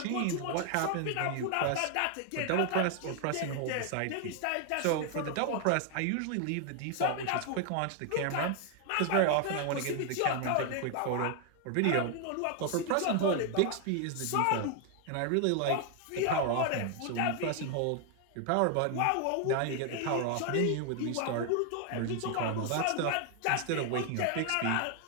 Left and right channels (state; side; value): different; both; correlation 0.00